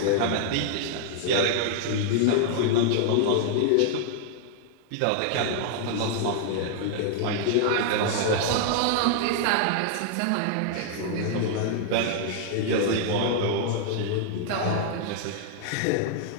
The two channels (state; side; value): different; both; correlation -0.01